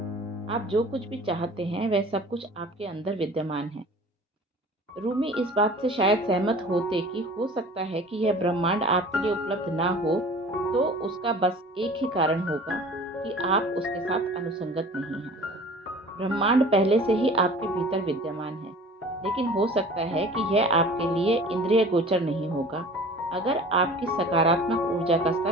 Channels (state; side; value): normal; both; correlation 0.44